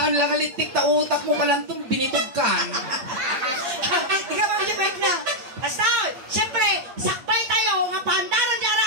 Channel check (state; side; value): late; left; 8.7 ms